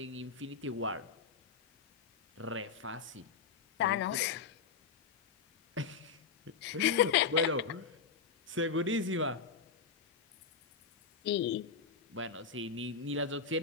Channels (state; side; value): quieter; right; 5.7 dB